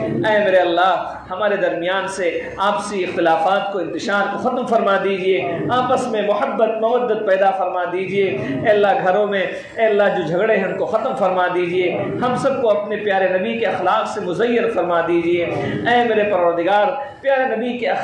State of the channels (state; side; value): identical; both; correlation 1.00